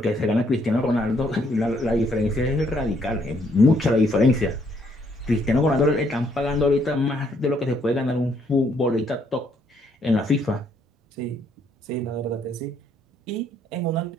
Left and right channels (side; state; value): both; normal; correlation 0.69